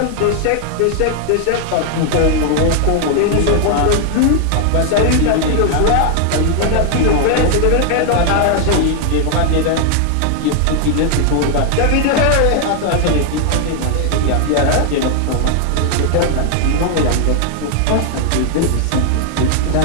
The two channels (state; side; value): different; both; correlation 0.00